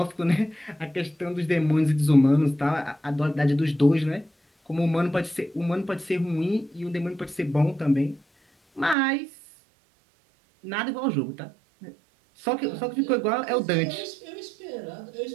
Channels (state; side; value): drops out; left; at 9.0 s